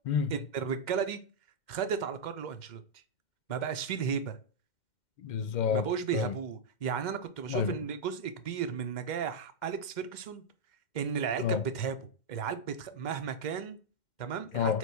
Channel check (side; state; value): right; late; 2.1 ms